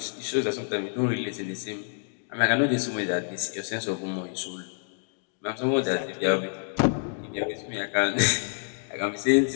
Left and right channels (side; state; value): right; silent; digital silence